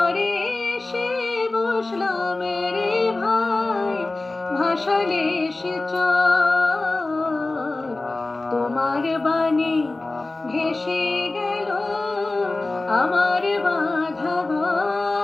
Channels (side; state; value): right; quieter; 3.1 dB